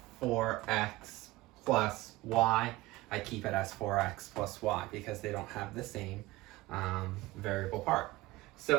4x plus y, I keep it as 4x plus y because they don't have the same variable part.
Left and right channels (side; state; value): left; quieter; 19.0 dB